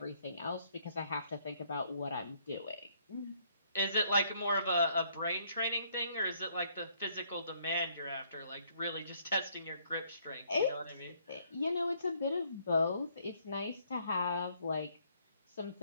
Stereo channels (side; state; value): both; inverted; correlation -0.67